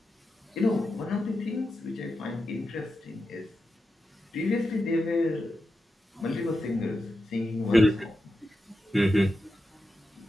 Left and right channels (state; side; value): normal; both; correlation 0.89